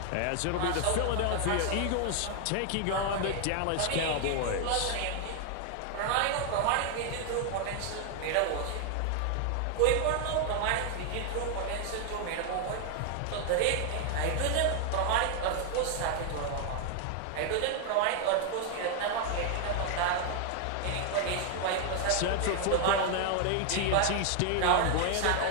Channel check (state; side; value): different; both; correlation 0.00